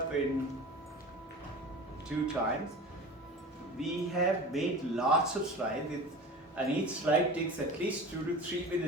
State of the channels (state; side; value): normal; both; correlation 0.35